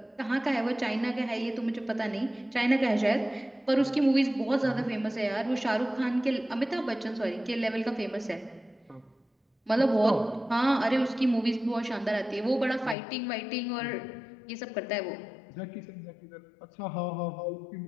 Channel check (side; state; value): right; drops out; at 13.0 s